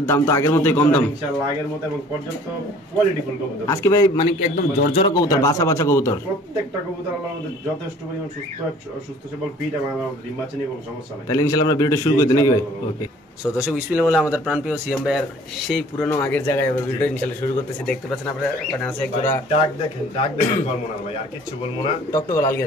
দাম তো আগের মতোই কম দাম ইনশাআল্লাহ, আগের মতো এবং পর্যাপ্ত কোয়ালিটিফুল কবুতর। আজকে ভাই মানে একদম জর্জরা কবুতর, বাছা বাছা কবুতর, প্রত্যেকটা কবুতর আল্লাহর মধ্যে যথেষ্ট পরিমাণ সুস্থ সবল ফিট এবং ডিম বাচ্চা নিয়ে কোনো সমস্যা নাই। তাহলে ইনশাআল্লাহ আমরা ভিডিওটা শুরু করতে নাকি ভাই? ওকে, সো দর্শক বিসমিল্লাহ বলে আমাদের প্রাণপ্রিয় সিএম ভাইয়ের সেই পুরনো আগের জায়গায় এবার ভিডিও ইনশাআল্লাহ শুরু করতেছি। দেখতে পাচ্ছেন আপনারা এখানে আছে এক জোড়া ডাক দেখেন বলবো না ভাই, আর কিছু বলবো না। টকটক লাল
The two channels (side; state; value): both; normal; correlation 0.52